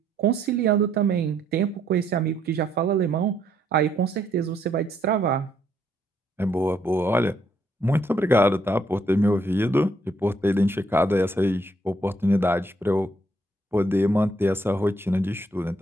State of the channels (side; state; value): both; normal; correlation 0.71